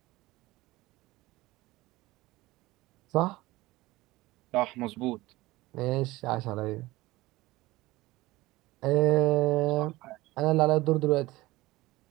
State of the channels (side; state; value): left; quieter; 19.3 dB